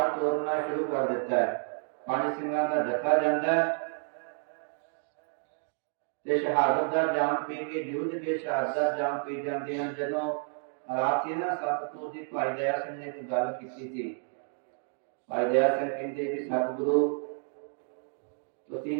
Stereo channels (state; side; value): silent; left; 56 dB below the other